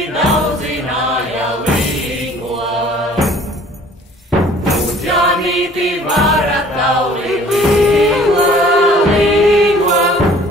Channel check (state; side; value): normal; both; correlation 0.52